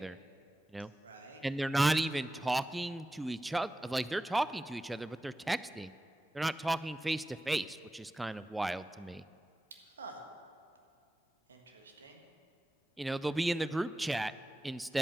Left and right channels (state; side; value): normal; both; correlation 0.95